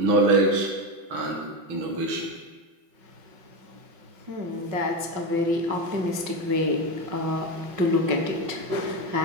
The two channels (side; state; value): left; late; 5.4 ms